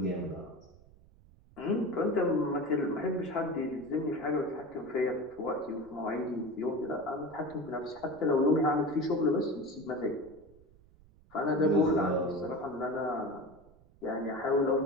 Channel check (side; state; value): right; noise; rumble, 26 dB below the sound